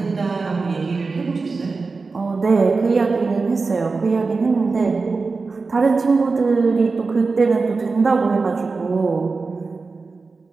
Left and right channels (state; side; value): quieter; left; 4.2 dB